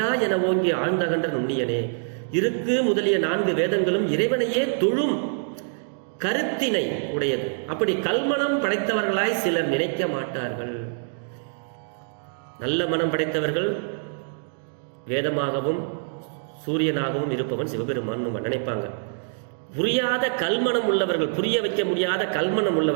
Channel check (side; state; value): left; silent; digital silence